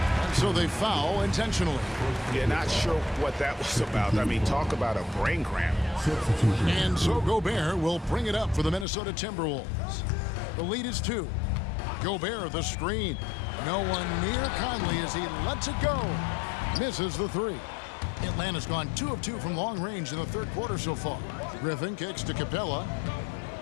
so they foul intentionally. Yeah, not sure what that was about. I mean, talk about a brain cramp. And so Gobert will bring it up for the Minnesota Timberwolves. The lead is 2. Gobert the screen. No one near Conley as he lets it go. Misses the 3. Atlanta's gone 2 of 2 from long range in the 3rd quarter so far. Griffin kicks to Capella.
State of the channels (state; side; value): drops out; right; at 8.8 s